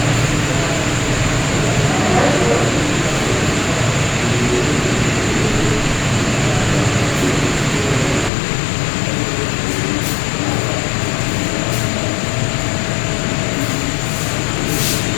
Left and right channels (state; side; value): drops out; right; at 8.3 s